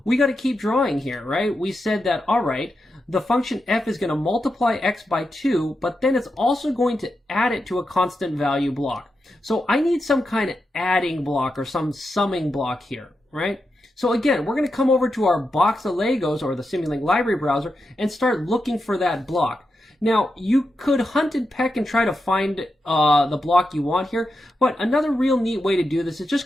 we got to keep drawing here, right? We said that, all right, the function f is going to multiply x by 2, but then it's also going to add it to a constant value block. So I need some kind of adding block or some summing block here, right? So again, we're going to come over to our box of Legos or the Simulink library browser and start looking for that block. Now, you could hunt and peck and try to find the block you want here, but another real neat way to do this is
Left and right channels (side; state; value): both; normal; correlation 0.87